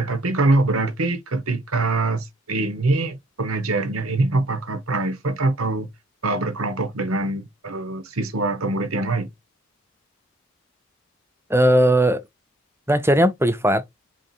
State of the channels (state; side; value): normal; both; correlation 0.66